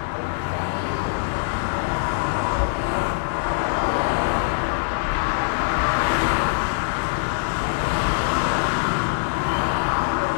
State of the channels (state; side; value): silent; right; digital silence